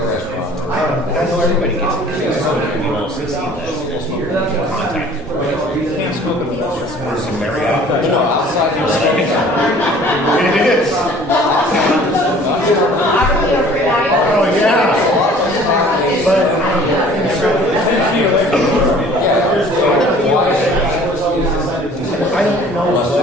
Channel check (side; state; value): both; normal; correlation 0.51